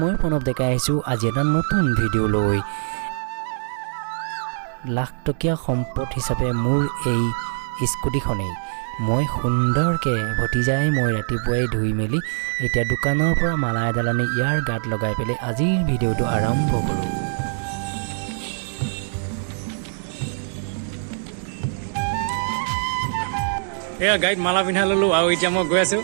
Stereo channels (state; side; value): silent; left; digital silence